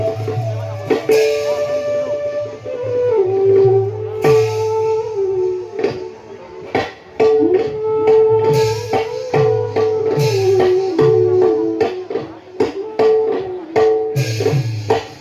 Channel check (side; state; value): both; identical; correlation 1.00